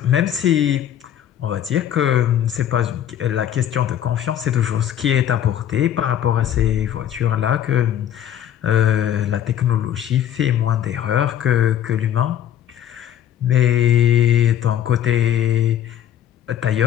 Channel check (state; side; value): quieter; right; 10.6 dB